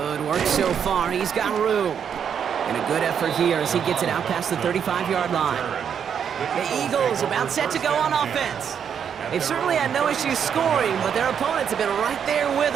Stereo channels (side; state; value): left; quieter; 7.8 dB